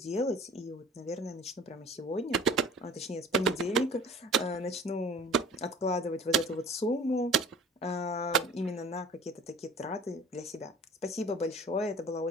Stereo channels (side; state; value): both; normal; correlation 0.46